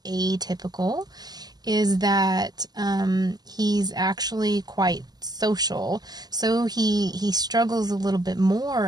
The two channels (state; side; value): late; left; 0.20 ms